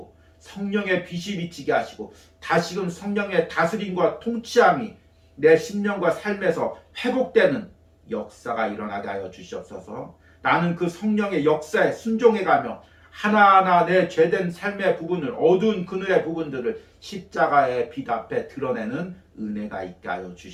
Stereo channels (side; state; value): both; identical; correlation 1.00